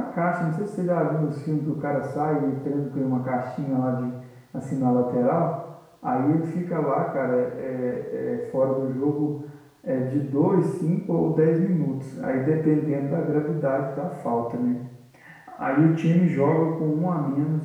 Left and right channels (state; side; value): identical; both; correlation 1.00